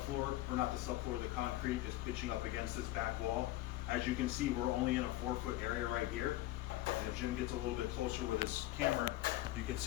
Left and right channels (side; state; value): right; quieter; 16.7 dB